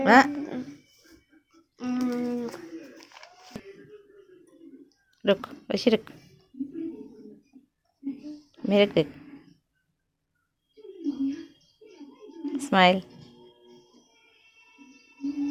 हाँ रुक वैसे रुक मेरे देख। Smile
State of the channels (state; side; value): identical; both; correlation 1.00